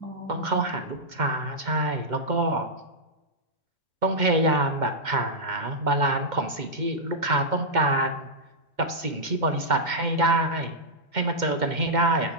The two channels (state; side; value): late; left; 2.1 ms